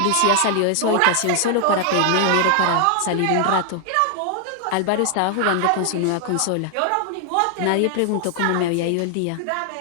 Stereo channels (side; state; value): both; different; correlation 0.00